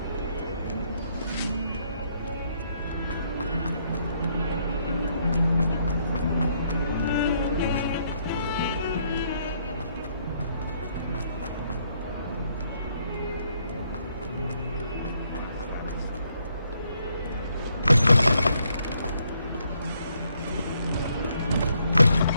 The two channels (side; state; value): both; inverted; correlation -0.72